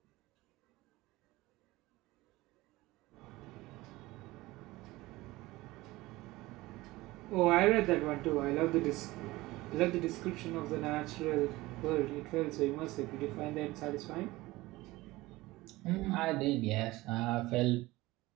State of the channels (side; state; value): left; quieter; 19.5 dB